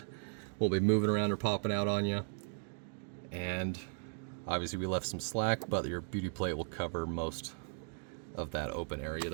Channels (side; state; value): left; silent; digital silence